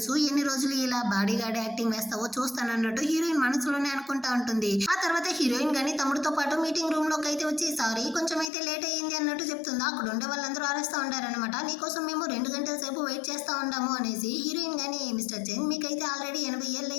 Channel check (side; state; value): right; drops out; at 8.5 s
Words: ఎన్ని రోజులు ఇలా బాడీ గార్డ్ యాక్టింగ్ వేస్తావో చూస్తానన్నట్టు హీరోయిన్ మనసులోనే అనుకుంటా ఉంటుంది. ఆ తర్వాత హీరోయిన్ కానీ తమ్ముడితో పాటు మీటింగ్ రూమ్ లోకి అయితే వచ్చి సారీ కొంచెం అయితే లేట్ అయ్యింది అన్నట్టు చెప్తుందా. అక్కడ ఉండే వాళ్ళందరూ అరుస్తూ ఉంటారనమాట. నీకోసం మేము 2 గంటల సేపు వెయిట్ చేస్తా ఉంటాము అనేసి. హీరోయిన్ కానీ మిస్టర్ చెన్ మీకైతే ఆల్రెడీ 80 ఏళ్ళు